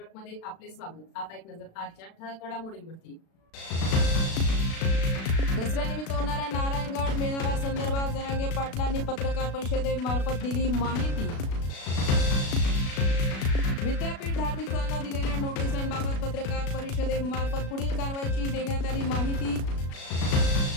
मध्ये आपले स्वागत। आता एक नजर आजच्या ठळक घडामोडींवरती। दसऱ्यानिमित्त होणाऱ्या नारायणगड मेळाव्यासंदर्भात जरांगे पाटलांनी पत्रकार परिषदेमार्फत दिली माहिती। विद्यापीठ धार्मिक स्थळांना दिलेल्या नोटिसांबाबत पत्रकार परिषदेमार्फत पुढील कारवाईची देण्यात आली माहिती।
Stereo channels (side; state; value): right; late; 36 ms